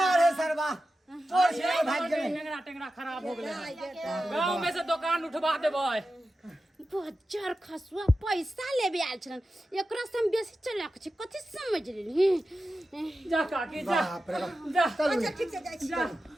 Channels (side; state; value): both; normal; correlation 0.92